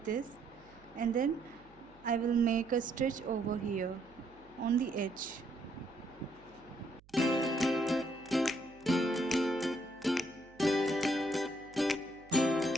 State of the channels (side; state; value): right; noise; hum, 27 dB below the sound